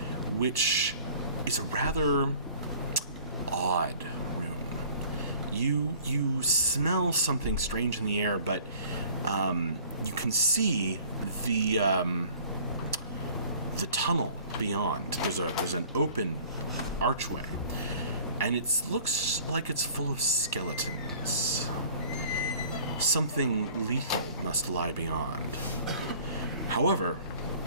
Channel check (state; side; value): inverted; both; correlation -0.50